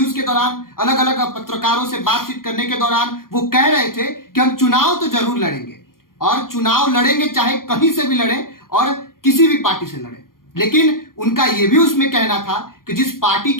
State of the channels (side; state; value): right; late; 0.91 ms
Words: के दौरान अलग अलग पत्रकारों से बातचीत करने के दौरान वो कह रहे थे कि हम चुनाव तो जरूर लड़ेंगे और चुनाव लड़ेंगे चाहे कहीं से भी लड़े और किसी भी पार्टी से लड़े। लेकिन उनका यह भी उसमें कहना था कि जिस पार्टी